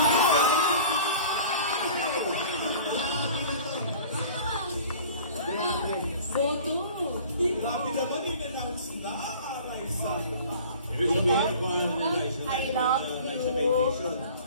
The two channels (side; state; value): both; inverted; correlation -0.45